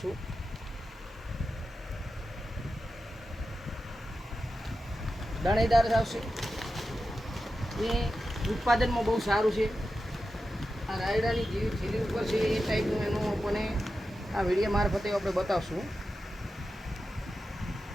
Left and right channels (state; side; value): normal; both; correlation 0.91